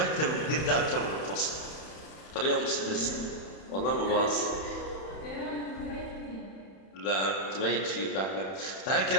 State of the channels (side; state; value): right; late; 31 ms